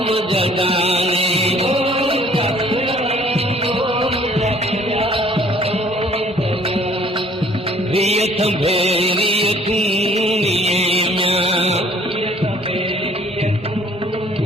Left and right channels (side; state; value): both; normal; correlation 0.57